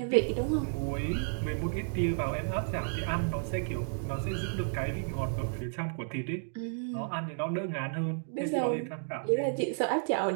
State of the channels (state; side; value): silent; left; digital silence